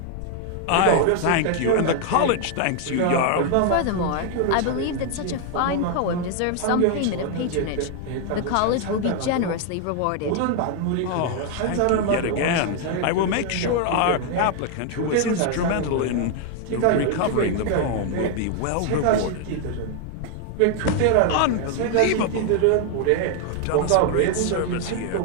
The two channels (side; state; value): both; different; correlation 0.00